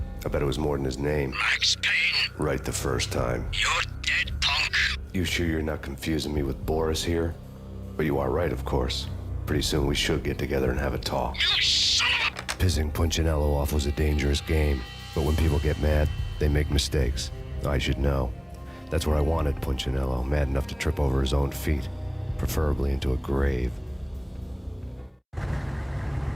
I bet it was more than his name. Max Payne, Right the first time. you're dead, punk. You sure you're not confusing me with Boris here? But you are right, of course. Pretty soon we should get together and have a talk. You son of a... Pissing Punchinello off was a dangerous game, but when people get mad, they make mistakes. I should know. That's where I wanted Punchinello, mad enough to trip over his own feet, preferably into a grave.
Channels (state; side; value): identical; both; correlation 1.00